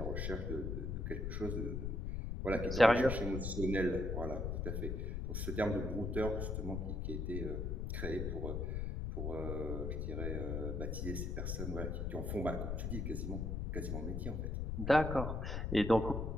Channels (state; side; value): noise; left; rumble, 2 dB below the sound